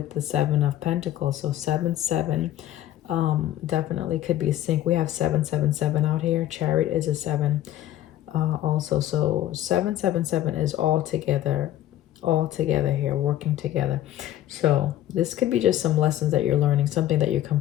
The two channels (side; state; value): right; quieter; 12.8 dB